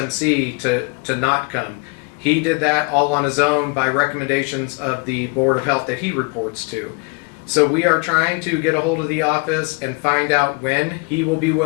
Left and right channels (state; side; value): quieter; right; 32.1 dB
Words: to not come. He did that all on his own by recommendations of the Board of Health that he reports to. So we are trying to get a hold of the office and find out when he will be